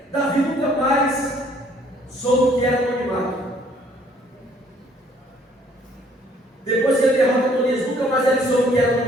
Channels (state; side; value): normal; both; correlation 0.61